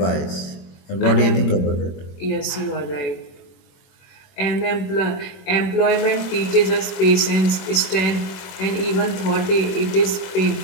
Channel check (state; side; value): late; right; 21 ms